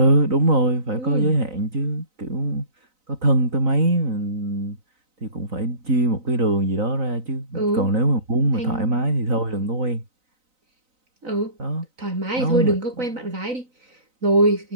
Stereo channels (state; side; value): late; left; 3.9 ms